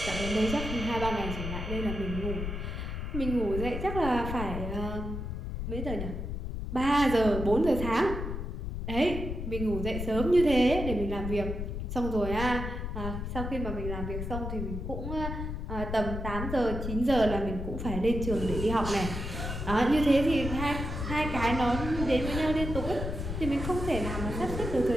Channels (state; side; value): noise; left; rumble, 5 dB below the sound